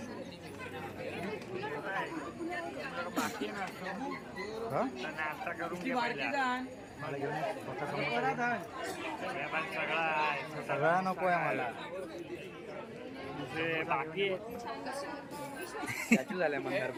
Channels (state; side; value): identical; both; correlation 1.00